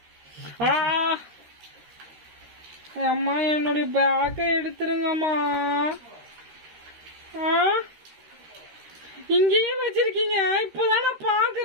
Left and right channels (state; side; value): late; left; 13 ms